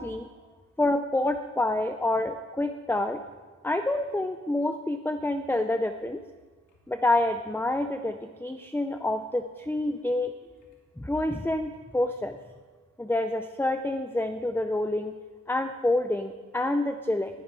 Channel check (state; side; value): normal; both; correlation 0.82